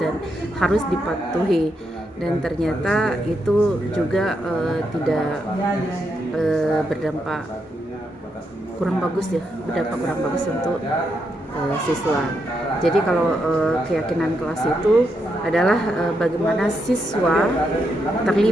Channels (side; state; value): both; normal; correlation 0.81